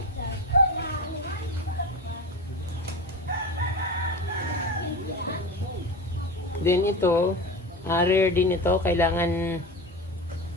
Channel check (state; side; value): normal; both; correlation 0.26